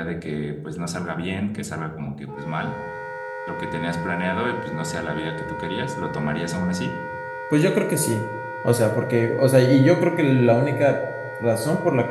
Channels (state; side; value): identical; both; correlation 1.00